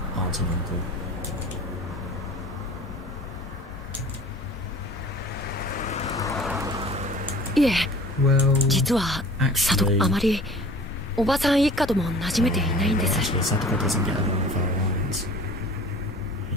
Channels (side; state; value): both; normal; correlation 0.45